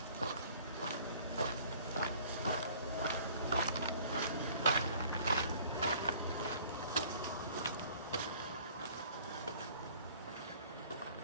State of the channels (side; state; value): both; inverted; correlation -0.53